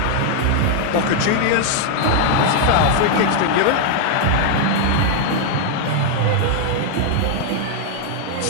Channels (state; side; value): different; both; correlation 0.00